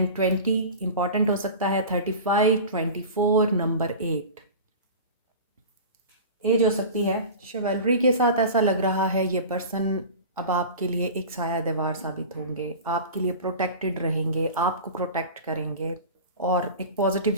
20 इंपॉर्टेंट हो सकता है। 35, 24, नंबर 8 एज हो सकती है। शिवलरी के साथ ऐसा लग रहा है ये पर्सन अब आपके लिए एक साया दीवार साबित होंगे, आपके लिए प्रोटेक्टेड रहेंगे, आपको प्रोटेक्ट करेंगे और एक पॉजिटिव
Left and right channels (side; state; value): both; inverted; correlation -0.33